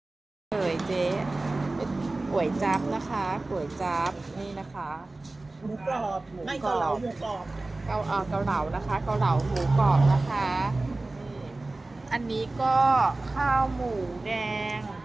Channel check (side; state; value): left; quieter; 3.1 dB